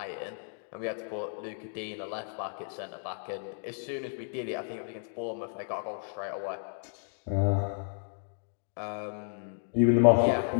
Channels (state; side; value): silent; right; digital silence